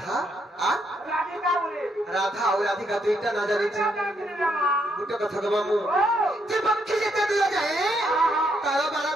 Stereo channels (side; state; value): both; normal; correlation 0.75